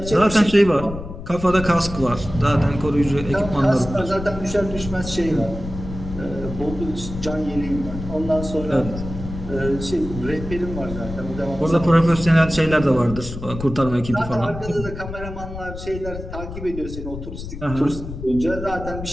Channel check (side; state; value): left; noise; rumble, 9 dB below the sound